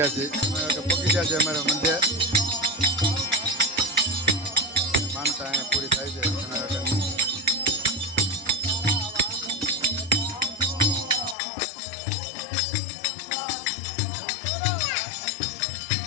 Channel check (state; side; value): drops out; right; at 11.4 s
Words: છીએ પહોંચી ગયા છે અમારા મઠે માનતા અહીંયા પૂરી થાય છે